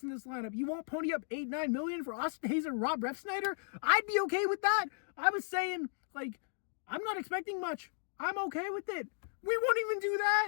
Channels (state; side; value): silent; right; digital silence